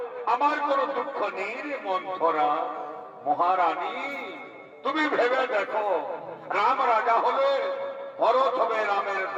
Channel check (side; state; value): both; identical; correlation 1.00